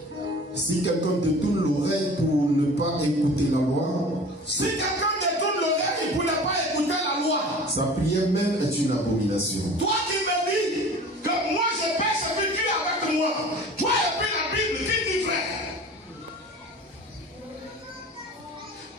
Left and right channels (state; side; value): normal; both; correlation 0.42